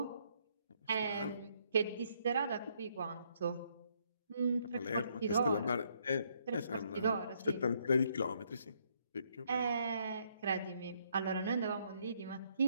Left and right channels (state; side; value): inverted; both; correlation -0.71